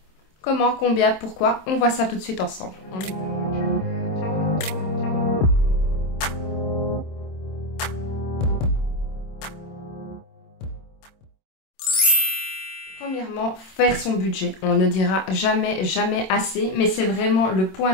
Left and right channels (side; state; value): right; late; 26 ms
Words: Comment, combien, pourquoi, on voit ça tout de suite ensemble. Premièrement, faire son budget. On ne dira jamais assez, mais c'est vraiment le point